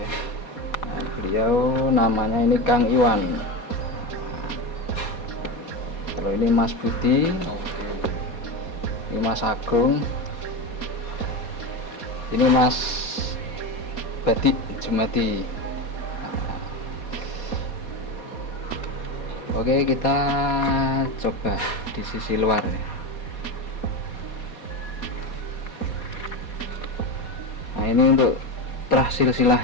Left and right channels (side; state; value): right; late; 4.2 ms